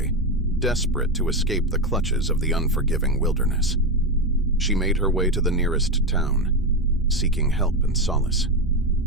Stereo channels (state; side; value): normal; both; correlation 0.11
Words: desperate to escape the clutches of the unforgiving wilderness. She made her way to the nearest town, seeking help and solace.